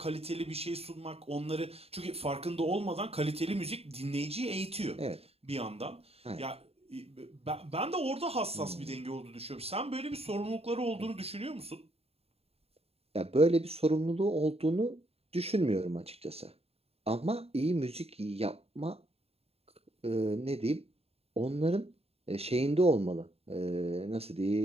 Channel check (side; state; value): left; late; 0.29 ms